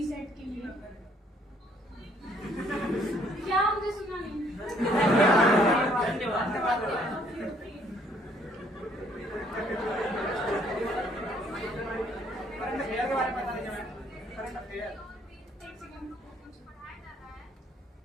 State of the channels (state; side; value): normal; both; correlation 0.64